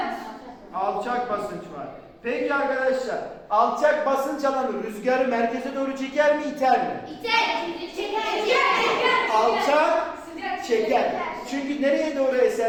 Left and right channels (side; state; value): both; identical; correlation 1.00